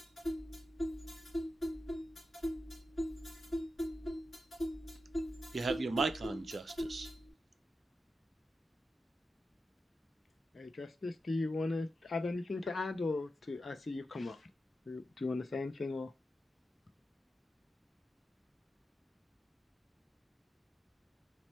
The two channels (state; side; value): normal; both; correlation 0.90